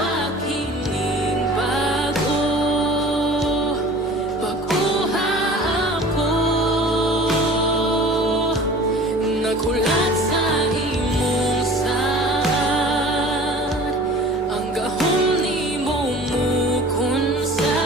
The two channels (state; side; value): normal; both; correlation 0.44